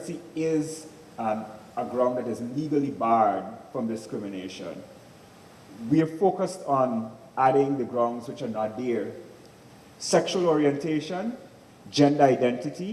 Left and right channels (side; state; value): both; identical; correlation 1.00